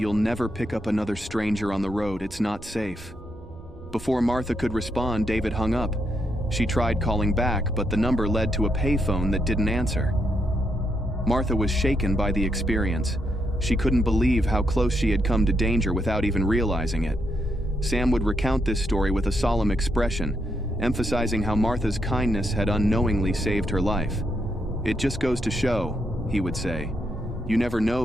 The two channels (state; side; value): normal; both; correlation 0.79